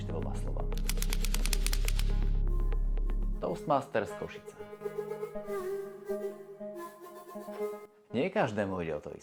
dvoma slovami? Toastmasters Košice. Nie každému ide o to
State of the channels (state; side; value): identical; both; correlation 1.00